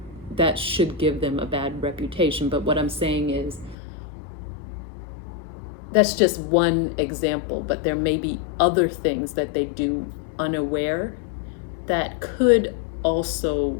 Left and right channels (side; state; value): right; drops out; at 3.8 s